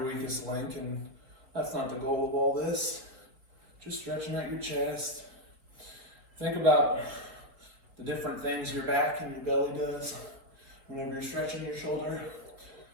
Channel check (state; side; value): late; left; 4.2 ms